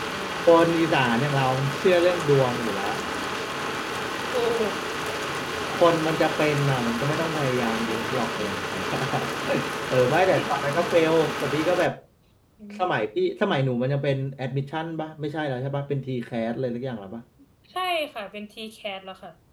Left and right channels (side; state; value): both; identical; correlation 1.00